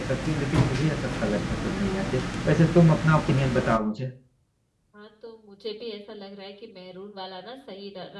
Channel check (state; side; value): identical; both; correlation 1.00